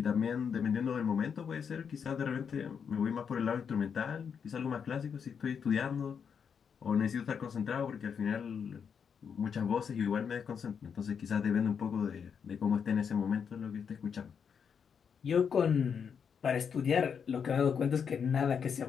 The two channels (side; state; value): right; quieter; 6.9 dB